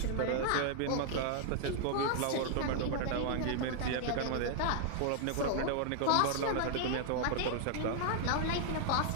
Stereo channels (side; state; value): both; different; correlation -0.01